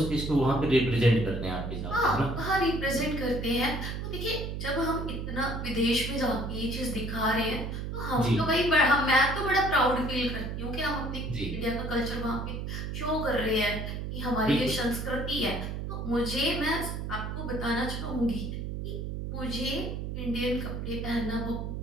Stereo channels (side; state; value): right; noise; hum, 4 dB below the sound